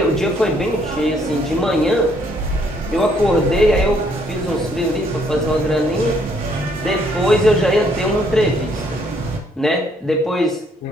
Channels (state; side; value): normal; both; correlation 0.67